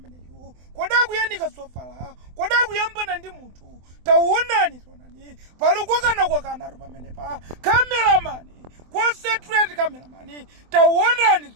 koda kuyanika sofala koda kuyambana ndi munthu taona ni palukokana kwakana rupa menepa cameraman concentrate cameraman taona ni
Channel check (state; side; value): late; left; 24 ms